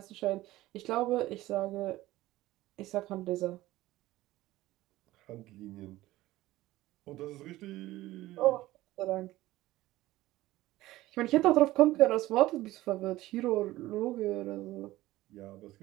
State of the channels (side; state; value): left; quieter; 16.9 dB